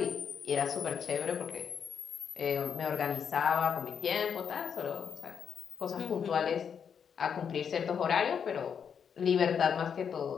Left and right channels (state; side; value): quieter; right; 7.3 dB